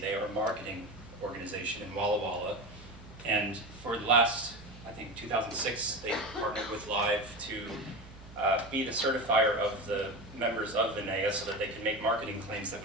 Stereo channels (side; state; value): both; normal; correlation 0.24